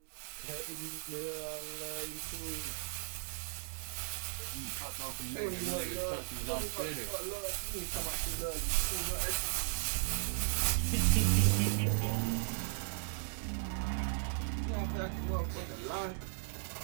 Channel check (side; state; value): left; silent; digital silence